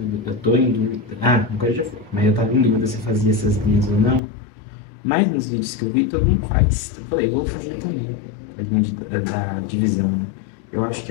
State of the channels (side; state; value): right; drops out; at 4.2 s